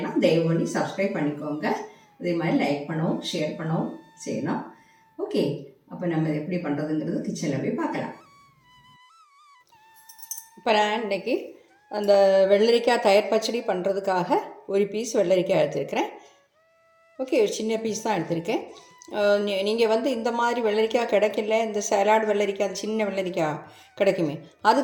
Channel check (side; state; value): both; identical; correlation 1.00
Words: தயவு பண்ணி சப்ஸ்கிரைப் பண்ணிக்கோங்க. அதே மாதிரி லைக் பண்ணவும் ஷேர் பண்ணவும் செய்யணும். ஓகே, அப்போ நம்ம எப்படி பண்ணுறதுங்கிறது கிச்சனில் போய் பார்க்கலாம். இப்போ நான் இன்றைக்கி அந்த வெள்ளரிக்காய் தயிர் பச்சடி பண்ணுறதுக்காக ஒரு பீஸ் வெள்ளரிக்காய் எடுத்துருக்கிறேன். ஓகே, ஒரு சின்ன பீஸ் தான் எடுத்திருக்கேன். நீங்கள் இந்த மாதிரி வெள்ளரிக்காய் கிடைக்கல, இந்த சலாட் வெள்ளரிக்காய், அது சின்ன வெள்ளரிக்காய் கிடைக்குமே, அது